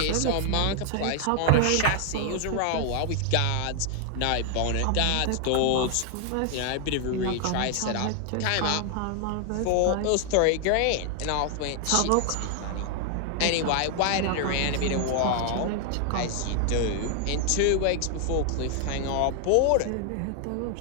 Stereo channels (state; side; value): different; both; correlation 0.00